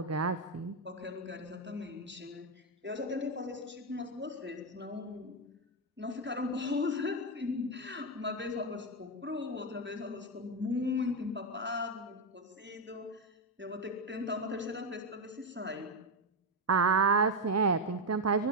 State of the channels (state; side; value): normal; both; correlation 0.06